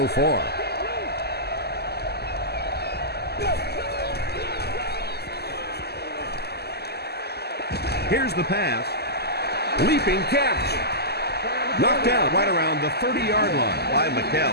far. Here's the pass. Leaping catch. Knocked out right around the 30-yard line by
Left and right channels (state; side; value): late; right; 0.47 ms